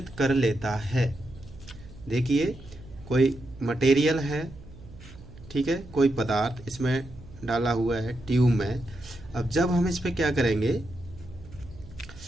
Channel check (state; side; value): noise; right; hum, 19 dB below the sound